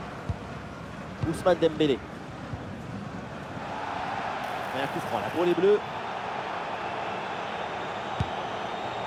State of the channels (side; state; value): both; identical; correlation 1.00